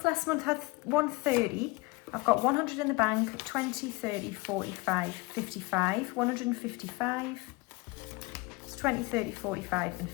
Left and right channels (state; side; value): quieter; right; 24.4 dB